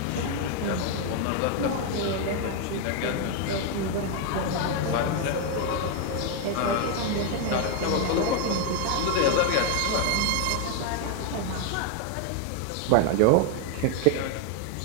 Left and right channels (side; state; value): both; different; correlation 0.01